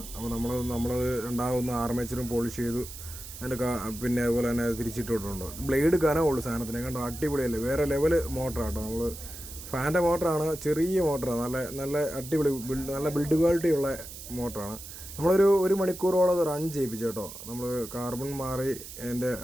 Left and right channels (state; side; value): noise; right; hiss, 12 dB below the sound